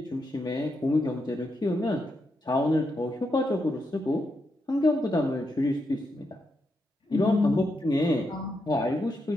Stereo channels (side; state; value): both; normal; correlation 0.83